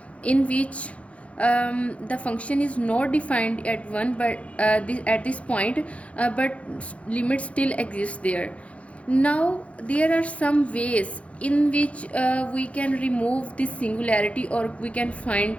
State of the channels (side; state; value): right; late; 0.063 ms